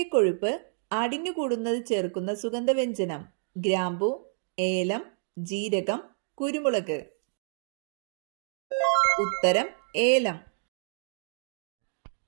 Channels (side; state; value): left; silent; digital silence